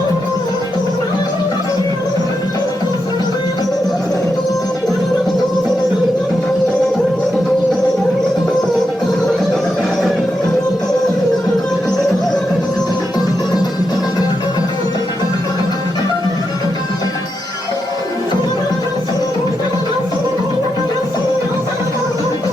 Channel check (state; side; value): normal; both; correlation 0.85